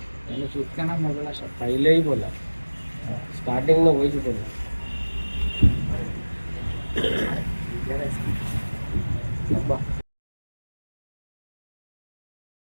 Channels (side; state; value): both; inverted; correlation -1.00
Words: పైలే बोला स्टार्टिंग में वही बोला।